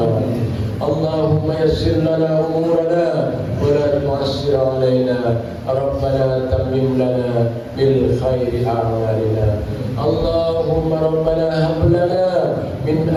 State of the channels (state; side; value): identical; both; correlation 1.00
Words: Allahumma yassir lana umurana wa la tu'assir alaina. Rabbana tammim lana bil khairi a'malina. Allahumma rabbana hab lana min